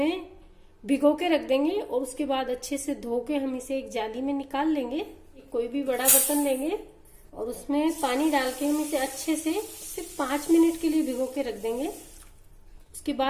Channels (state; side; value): identical; both; correlation 1.00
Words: भिगो के रख देंगे और उसके बाद अच्छे से धो के हम इसे एक जाली में निकाल लेंगे। कोई भी बड़ा बर्तन लेंगे और उसमें पानी डाल के हम इसे अच्छे से सिर्फ 5 मिनट के लिए भिगो के रख देंगे। उसके